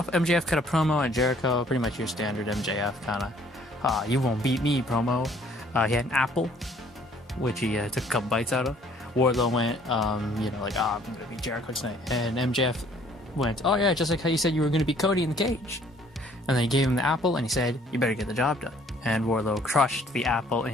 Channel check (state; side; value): normal; both; correlation 0.59